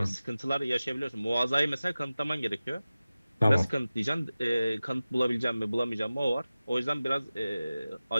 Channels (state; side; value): inverted; both; correlation -0.96